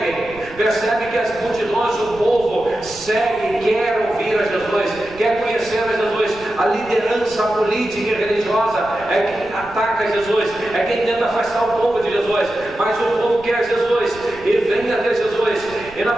Percebe que as multidões, o povo, segue, quer ouvir a Jesus, quer conhecer a Jesus. A liderança política e religiosa é quem ataca Jesus, é quem tenta afastar o povo de Jesus. Mas o povo quer Jesus e vem até Jesus. E nós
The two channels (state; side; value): noise; right; rumble, 20 dB below the sound